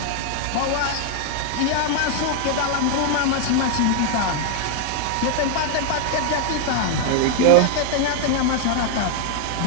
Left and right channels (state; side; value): different; both; correlation 0.00